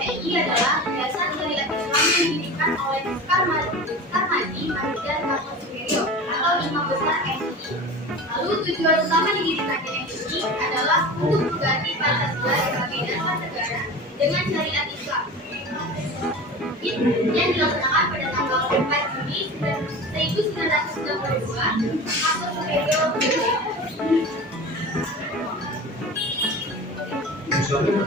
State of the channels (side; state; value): both; normal; correlation 0.33